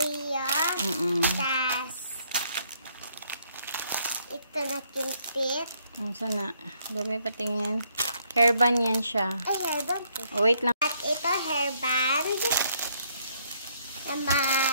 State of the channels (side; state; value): both; inverted; correlation -0.70